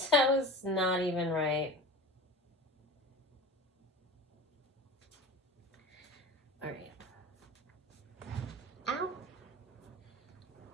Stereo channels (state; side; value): normal; both; correlation 0.34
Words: That was not even right. All right. Ow.